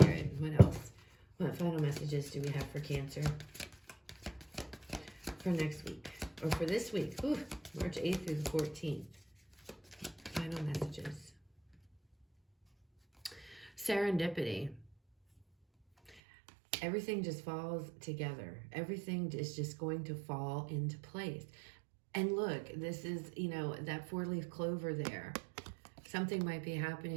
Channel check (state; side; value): drops out; left; at 16.2 s